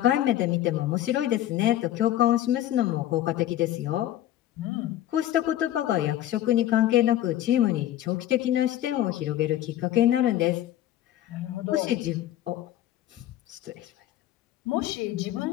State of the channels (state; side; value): quieter; right; 13.0 dB